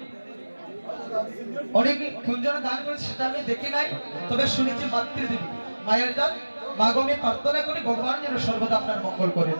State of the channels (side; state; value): both; inverted; correlation -1.00